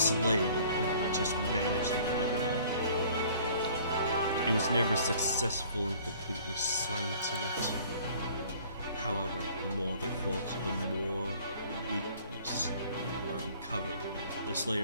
would only just manage to fight it off. He was never successful in completely silencing it. However, the more they fought, the more weakness were uncovered. The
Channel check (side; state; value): both; inverted; correlation -0.53